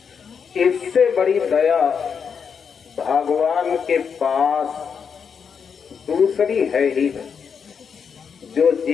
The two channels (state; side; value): quieter; right; 6.6 dB